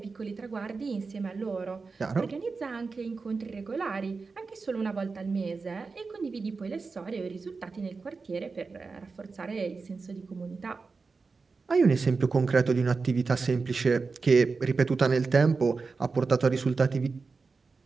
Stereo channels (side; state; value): left; quieter; 4.4 dB